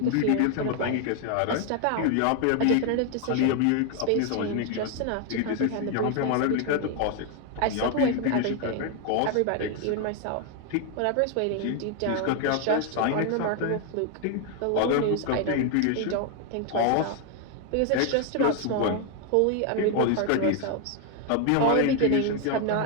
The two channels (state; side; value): different; both; correlation 0.01